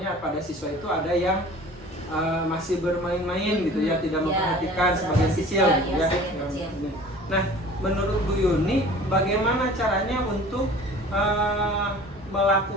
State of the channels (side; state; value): both; normal; correlation 0.45